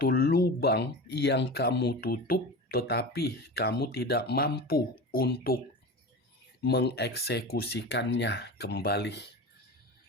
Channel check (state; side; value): normal; both; correlation 0.29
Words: lubang yang kamu tutup, tetapi kamu tidak mampu untuk mengeksekusikannya kembali.